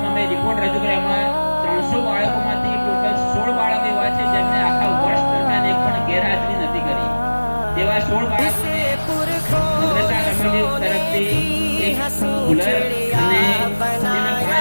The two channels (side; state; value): both; inverted; correlation -1.00